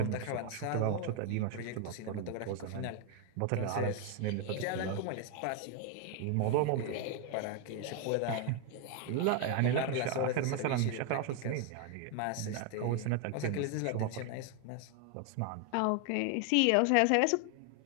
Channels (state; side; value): different; both; correlation 0.01